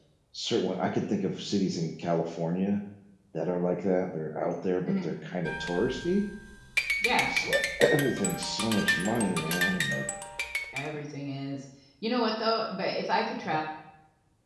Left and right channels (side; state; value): both; identical; correlation 1.00